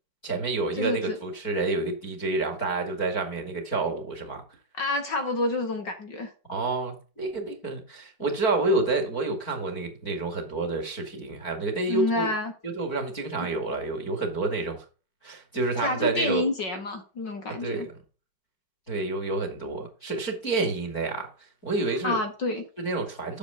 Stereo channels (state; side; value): late; right; 4.4 ms